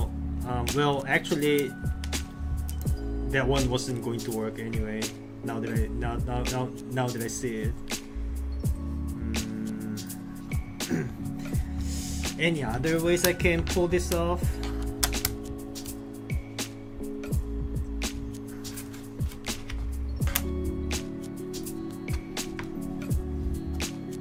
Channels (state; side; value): identical; both; correlation 1.00